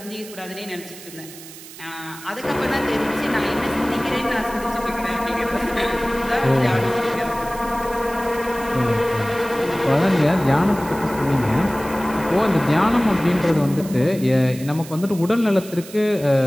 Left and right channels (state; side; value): noise; right; hiss, 16 dB below the sound